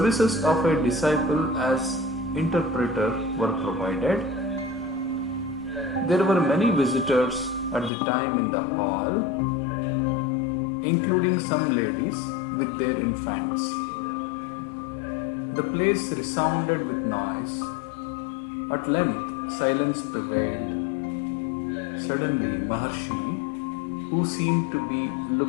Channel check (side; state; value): right; drops out; at 7.9 s